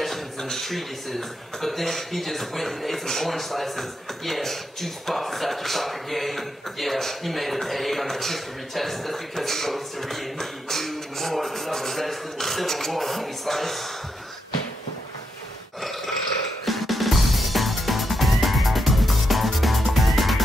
and treatises, but then he just went and ate some orange slices. Yeah, juice boxes after soccer game. Yeah, he made an A on the history test. That's because he wrote history and he knew more than all the rest in the Civil War, homie slice.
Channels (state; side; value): normal; both; correlation 0.83